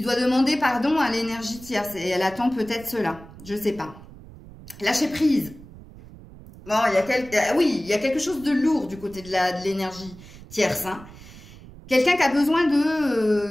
doit demander pardon à l'énergie tierce. Et elle attend peut-être cela. Je ne sais pas. Lâcher prise. Bon, oui, il y a quelque chose de lourd du côté de l'énergie tierce. Quelqu'un qui a besoin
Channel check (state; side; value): noise; right; rumble, 18 dB below the sound